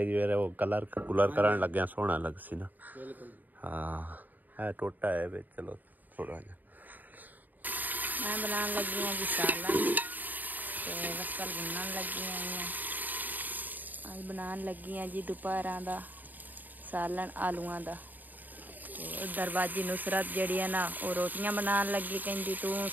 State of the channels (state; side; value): late; left; 0.085 ms